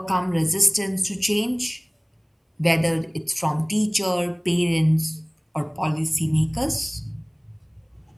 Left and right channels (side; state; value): both; identical; correlation 1.00